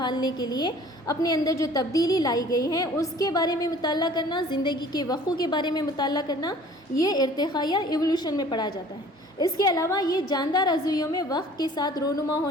کے لیے اپنے اندر جو تبدیلی لائی گئی ہے اس کے بارے میں مطالعہ کرنا، زندگی کے وقوع کے بارے میں مطالعہ کرنا، یہ ارتقاء یا ایوولوشن میں پڑھا جاتا ہے۔ اس کے علاوہ یہ جاندار عضویوں میں وقت کے ساتھ رونما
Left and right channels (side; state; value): both; normal; correlation 0.50